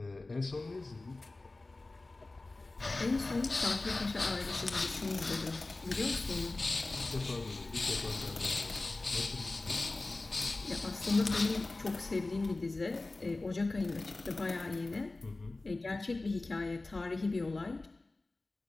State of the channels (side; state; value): right; quieter; 3.1 dB